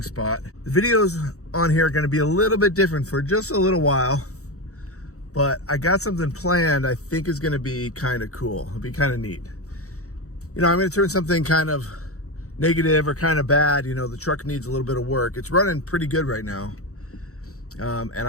spot. The videos on here are going to be a little bit different for just a little while, but I got something planned I think is going to be kind of cool. It'll be kind of neat. You know, I'm going to turn something kind of negative or kind of bad. You know, the truck needs a little bit of work. It's running pretty good right now. And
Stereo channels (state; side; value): late; right; 0.65 ms